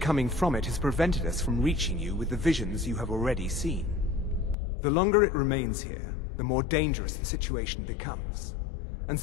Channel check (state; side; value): drops out; right; at 4.5 s